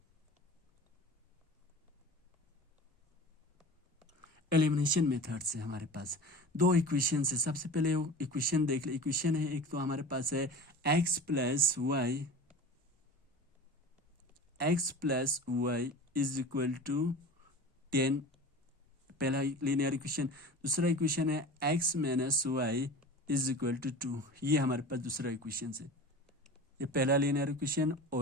elimination method से हमारे पास दो इक्वेशन है। सबसे पहले इक्वेशन देख ले। इक्वेशन है एक, तो हमारे पास है x plus Y is equal to 10, पहला लीनियर इक्वेशन। दूसरा इक्वेशन है x minus y is equal to 2। ये हमारे पास दूसरा इक्वेशन है। ये पहला लीनियर इक्वेशन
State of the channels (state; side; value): normal; both; correlation 0.35